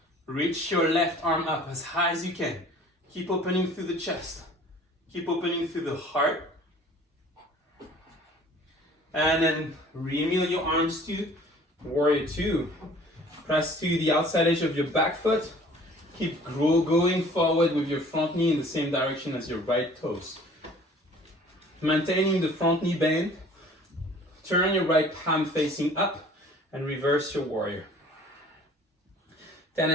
Reach your left arm up as high as you can. Keep opening through the chest. Keep opening through the heart. And then re-mill your arms to warrior two. Press to the outside edge of your back foot. Keep going forward with your front knee in the same direction as your right toes. Maintaining the front knee bend. Turn your right palm facing up and reverse your warrior.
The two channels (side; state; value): both; normal; correlation 0.50